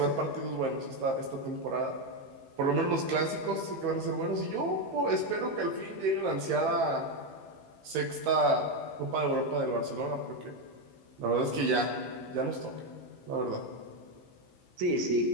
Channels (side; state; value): left; late; 15 ms